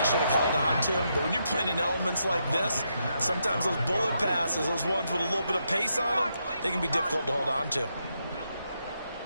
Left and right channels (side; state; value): both; inverted; correlation -0.81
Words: should have held on to. But when you're playing in elements like this, sometimes those bullet passes, those ones with a little bit of pace on them, they can be difficult to hold on to.